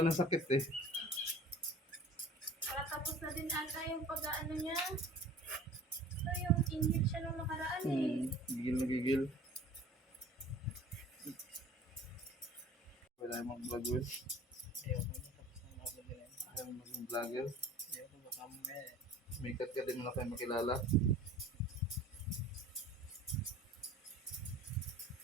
ng sakit eh. Tapos na din ata yung pag-ano niya. So yung inhib siya nung nakaraan eh. Gigil na gigil. Wala yung mga vlogger. Ayaw mo maging vlogger. May kat din mo na kayo makilala.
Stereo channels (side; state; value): both; normal; correlation 0.45